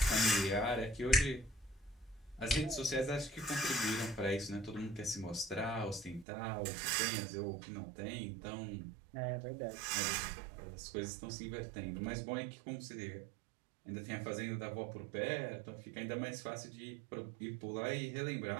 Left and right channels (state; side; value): drops out; left; at 6.2 s